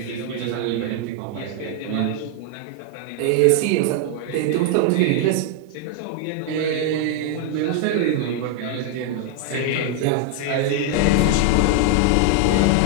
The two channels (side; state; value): both; different; correlation 0.00